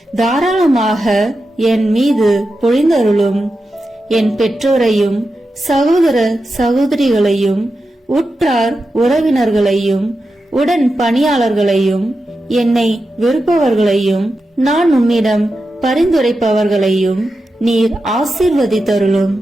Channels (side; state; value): both; normal; correlation 0.90